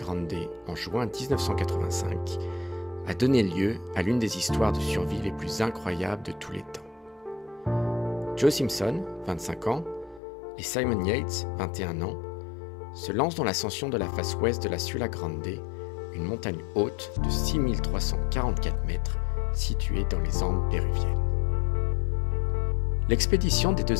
en juin 1985 a donné lieu à l'une des histoires de survie les plus incroyables de tous les temps. Joe Simpson, 25 ans, et Simon Yates, 21 ans, se lancent dans l'ascension de la face ouest de la Sula Grande, une montagne haute de 6344 mètres située dans les Andes péruviennes. L'expédition des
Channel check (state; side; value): drops out; right; at 10.2 s